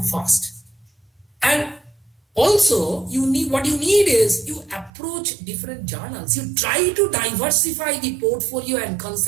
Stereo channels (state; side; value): drops out; left; at 4.9 s